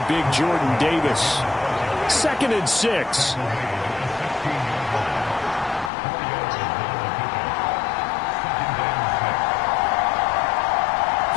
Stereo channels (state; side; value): drops out; right; at 5.9 s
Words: big Jordan Davis. 2nd and 6.